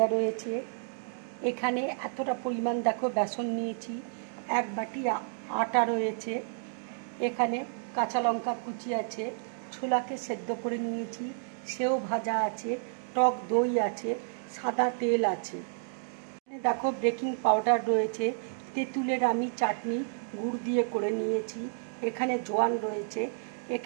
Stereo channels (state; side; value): silent; left; digital silence